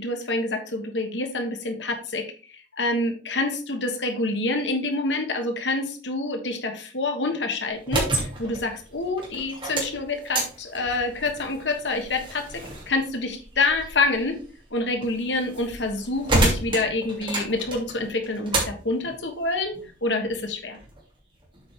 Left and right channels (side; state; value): both; normal; correlation 0.27